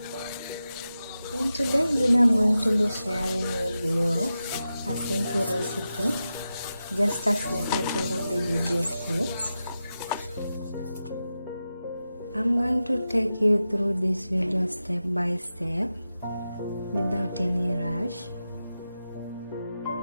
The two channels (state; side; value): inverted; both; correlation -0.91